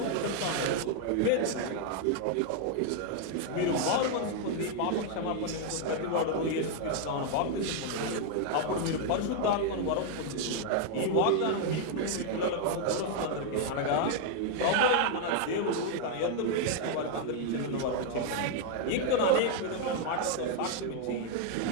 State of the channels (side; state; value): both; different; correlation 0.00